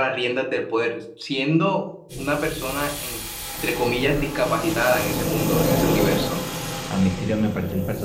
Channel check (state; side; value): identical; both; correlation 1.00